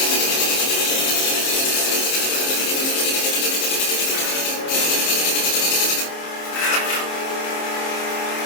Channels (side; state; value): right; late; 26 ms